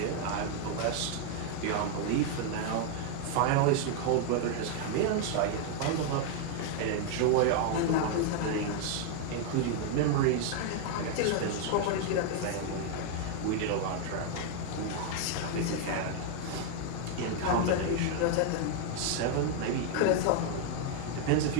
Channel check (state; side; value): different; both; correlation 0.00